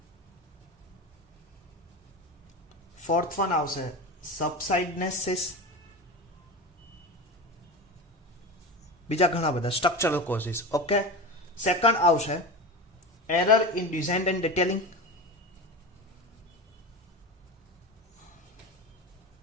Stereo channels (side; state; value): both; normal; correlation 0.26